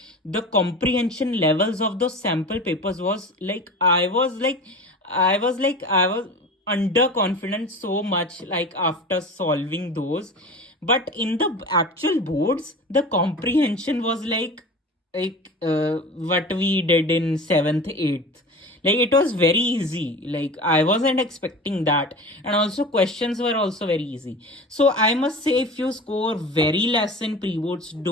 the comprehension levels of those sample papers was like I was underconfident so much, like after solving those. But in the actual boards, the comprehension was like what we did in 7th 8th. Like it was very easy, like I wasn't expecting that. And also questions were also very easy. So I must say, if you score very less in pre-boards,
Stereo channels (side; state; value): both; normal; correlation 0.34